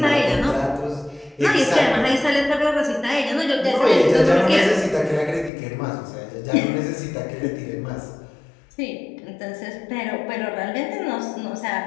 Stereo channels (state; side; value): drops out; right; at 5.5 s